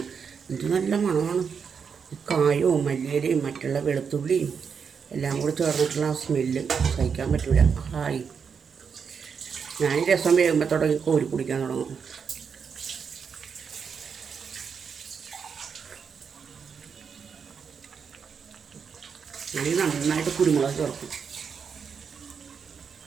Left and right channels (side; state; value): left; quieter; 6.4 dB